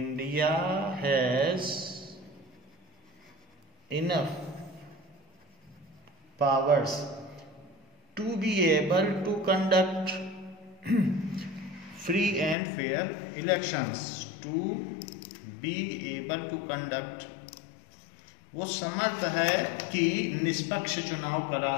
has enough powers to be able to conduct free and fair elections. To be able to conduct, वो समर्थ है कि निष्पक्ष चुनाव करा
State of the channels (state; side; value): drops out; right; at 12.6 s